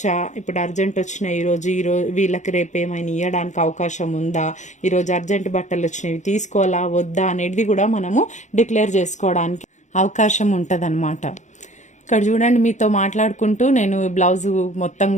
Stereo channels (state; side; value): late; right; 0.35 ms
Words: ఇప్పుడు అర్జెంట్ వచ్చినాయి ఈరోజు వీళ్ళకి రేపు ఏమైనా ఇవ్వడానికి అవకాశం ఉందా, ఈరోజు అర్జెంట్ బట్టలు వచ్చినవి తీసుకోవాలా వద్దా అనేది కూడా మనము డిక్లేర్ చేసుకోవడానికి అవకాశం ఉంటుంది. ఇక్కడ చూడండి, మీతో మాట్లాడుకుంటూ నేను బ్లౌజ్ మొత్తం